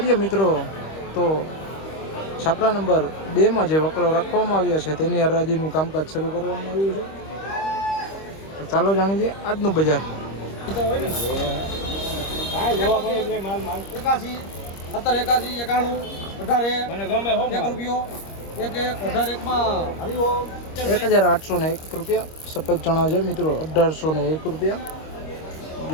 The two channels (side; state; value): right; late; 25 ms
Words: મિત્રો તો છાપરા નંબર 2માં જે વકલો રાખવામાં આવ્યા છે તેની હરાજીનું કામકાજ શરૂ કરવામાં આવ્યું છે. તો ચાલો જાણી લઈએ આજનું બજાર. 1801 રૂપિયા સફેદ ચણા છે મિત્રો, 1801 રૂપિયા